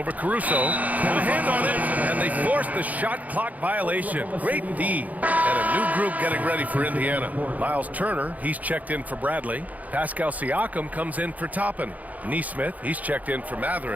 Caruso. And a hand on it. And they force the shot clock violation. Great D. And a new group getting ready for Indiana. Miles Turner, he's checked in for Bradley. Pascal Siakam comes in for Toppin. Nesmith, he's checked in for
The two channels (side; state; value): left; late; 0.076 ms